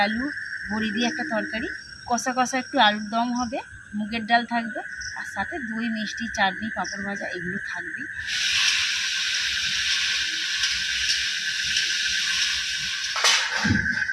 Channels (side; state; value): both; identical; correlation 1.00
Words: আলু, বড়ি দিয়ে একটা তরকারি, কষা কষা একটু আলুর দম হবে, মুগের ডাল থাকবে, আর সাথে দই, মিষ্টি, চাটনি, পাঁপড় ভাজা এগুলো থাকবেই।